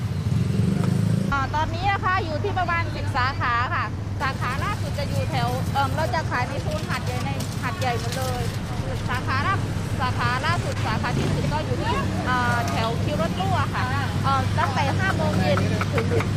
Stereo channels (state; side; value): identical; both; correlation 1.00